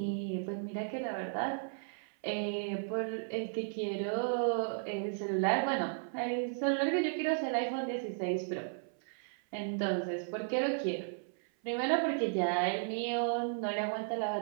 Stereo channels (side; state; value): left; silent; 55 dB below the other